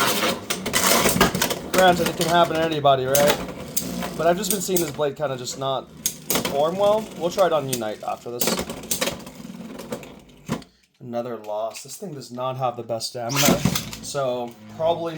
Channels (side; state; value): both; identical; correlation 1.00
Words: Granted, it can happen to anybody, right? But I've just been seeing this blade kind of just not perform well. We'll try it on Unite after this. Another loss. This thing does not have the best stamina, so probably